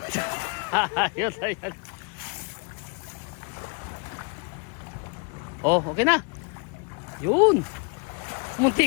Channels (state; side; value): quieter; right; 31.2 dB